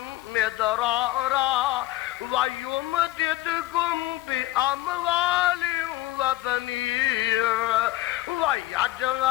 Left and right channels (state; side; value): quieter; right; 16.5 dB